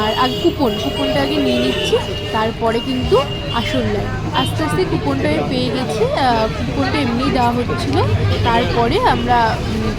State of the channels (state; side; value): identical; both; correlation 1.00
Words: আগে কুপনটা আগে নিয়ে নিচ্ছি, তারপরে কিন্তু আসল লাইন। আস্তে আস্তে কুপনটা পেয়ে গেছি, কুপনটা এমনিই দেওয়া হচ্ছিল। তারপরে আমরা